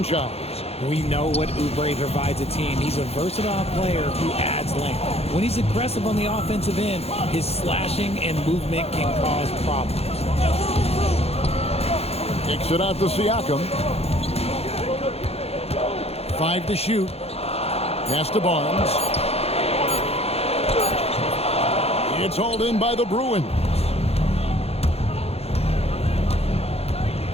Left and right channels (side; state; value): right; late; 0.29 ms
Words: We know what Oubre provides a team. He's a versatile player who adds length. When he's aggressive on the offensive end, his slashing and movement can cause problems. Kicks it out to Siakam. 5 to shoot. Pass to Barnes. It's hauled in by the Bruins.